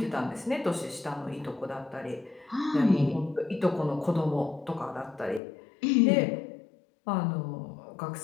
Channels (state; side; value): drops out; right; at 5.4 s